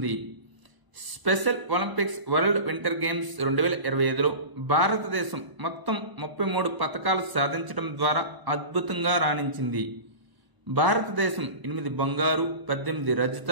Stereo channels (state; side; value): late; left; 1.0 ms